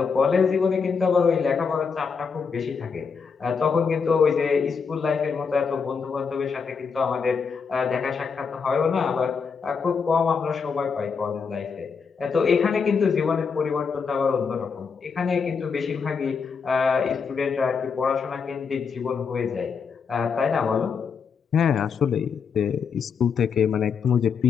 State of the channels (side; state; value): right; quieter; 5.8 dB